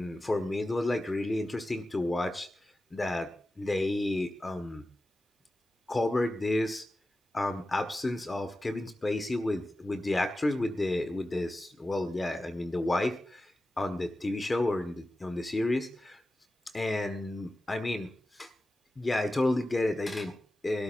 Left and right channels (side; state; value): both; normal; correlation 0.93